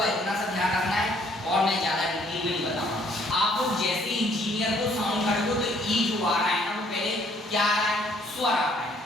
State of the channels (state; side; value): normal; both; correlation 0.64